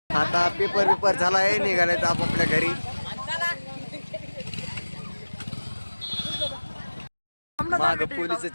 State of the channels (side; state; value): both; inverted; correlation -1.00